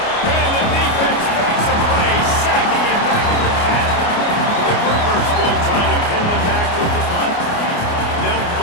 And the defense makes a play, sacking him back at the 10. The Groupers will try to pin them back with the punt. They'll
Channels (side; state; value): right; late; 29 ms